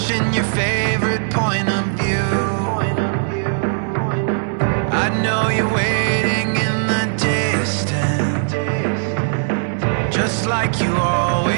your favorite point of view. I know you're waiting in the distance, just like you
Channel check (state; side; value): silent; left; digital silence